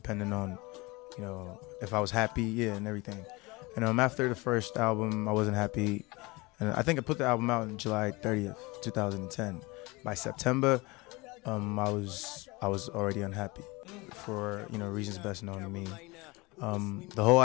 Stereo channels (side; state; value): right; quieter; 24.1 dB